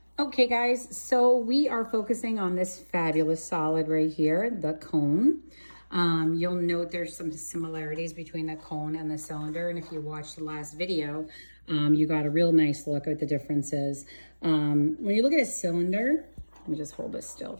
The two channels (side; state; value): both; inverted; correlation -1.00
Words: Okay, guys, so we are focusing on this fabulous solid right here, the cone. You'll note there's some similarities between the cone and the cylinder, and if you watched the last video, you got a real nice look at the differences. When you look at a cylinder, let me just hold this still